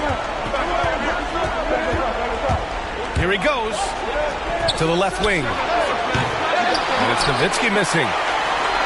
Here he goes. To the left wing. And it's Nowitzki missing.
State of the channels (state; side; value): identical; both; correlation 1.00